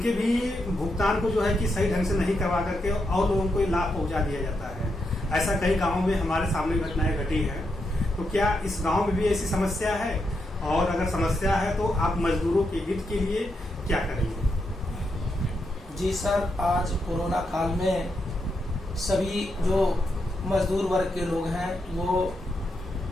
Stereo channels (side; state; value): both; normal; correlation 0.83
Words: भी भुगतान को जो है कि सही ढंग से नहीं करवा करके और लोगों को लाभ पहुंचा दिया जाता है। ऐसा कई गाँवों में हमारे सामने घटनाएं घटी हैं। तो क्या इस गाँव में भी ऐसी समस्या है, और अगर समस्या है तो आप मजदूरों के हित के लिए क्या करेंगे? जी सर, आज कोरोना काल में सभी जो मजदूर वर्ग के लोग हैं वो